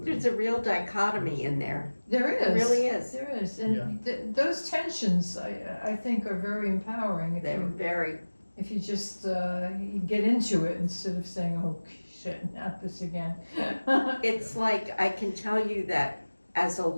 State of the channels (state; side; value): inverted; both; correlation -1.00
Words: There's a real dichotomy in there. There is. It really is. There is, and Yeah. those tensions I think are very empowering if They're you very. if you just you get into it instead of saying, oh shit, not this again. It's like I can tell you that as a